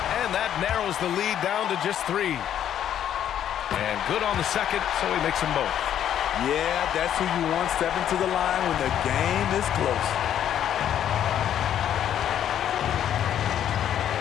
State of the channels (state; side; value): quieter; right; 10.2 dB